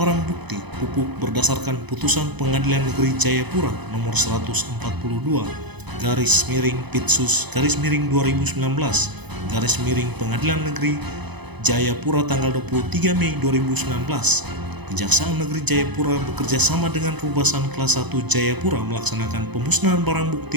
bukti pupuk berdasarkan putusan Pengadilan Negeri Jayapura nomor 142, garis miring Pitsus, garis miring 2019, garis miring Pengadilan Negeri Jayapura tanggal 23 Mei 2019. Kejaksaan Negeri Jayapura bekerja sama dengan Rubasan Kelas 1 Jayapura melaksanakan pemusnahan barang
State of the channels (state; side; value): late; left; 0.99 ms